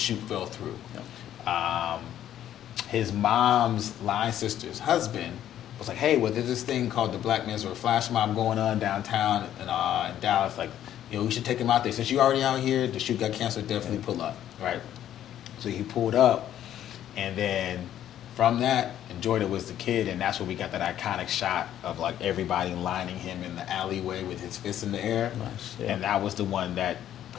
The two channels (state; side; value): quieter; right; 11.3 dB